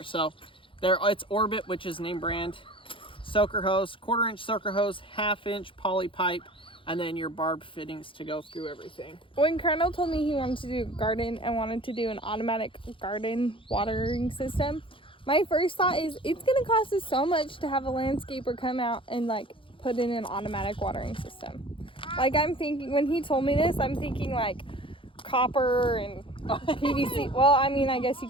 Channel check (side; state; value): right; late; 0.25 ms